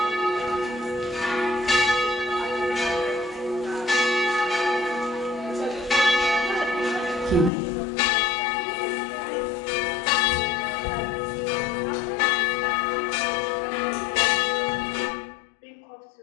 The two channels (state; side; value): drops out; right; at 7.5 s